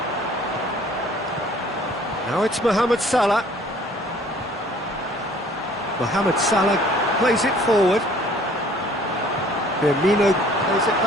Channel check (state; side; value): normal; both; correlation 0.54